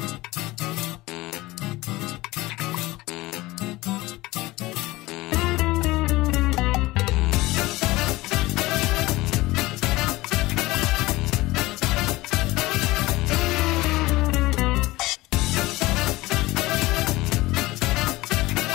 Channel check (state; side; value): quieter; right; 19.7 dB